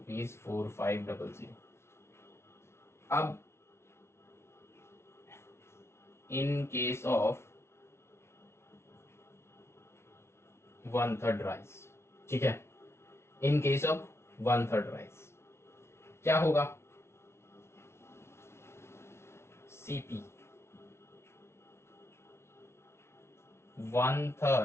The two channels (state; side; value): late; right; 0.13 ms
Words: अब इन केस ऑफ 1/3 राइस, ठीक है, इन केस ऑफ 1/3 राइस क्या होगा, सीपी